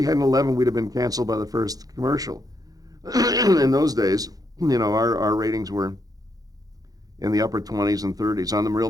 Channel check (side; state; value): left; late; 0.18 ms